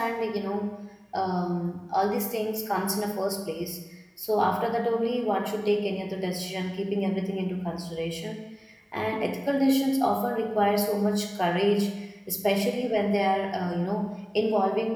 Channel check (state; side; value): identical; both; correlation 1.00